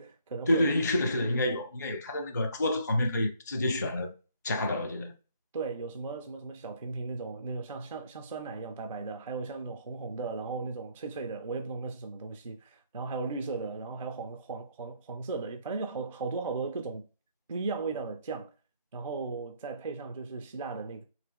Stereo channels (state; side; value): inverted; both; correlation -0.65